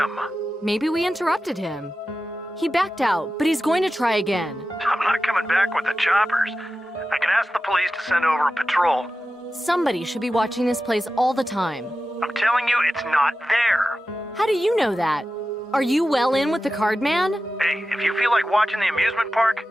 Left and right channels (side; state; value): both; normal; correlation 0.93